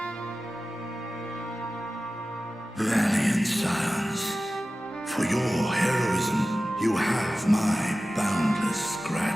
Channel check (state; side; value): normal; both; correlation 0.95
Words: Valiant sons, for your heroism, you have my boundless